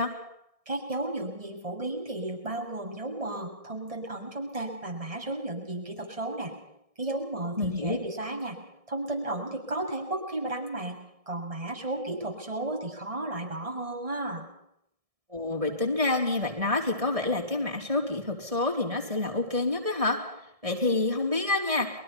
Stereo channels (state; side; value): late; left; 1.6 ms